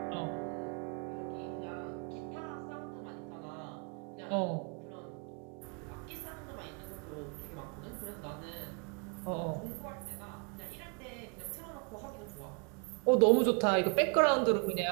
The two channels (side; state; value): left; quieter; 35.4 dB